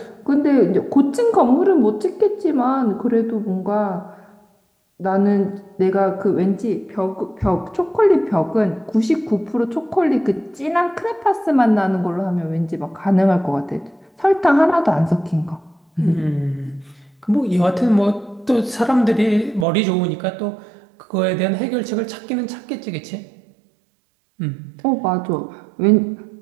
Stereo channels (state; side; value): drops out; left; at 19.7 s